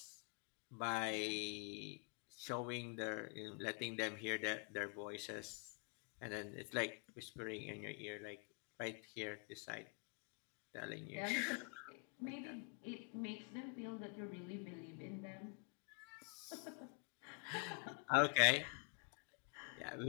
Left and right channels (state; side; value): quieter; right; 34.6 dB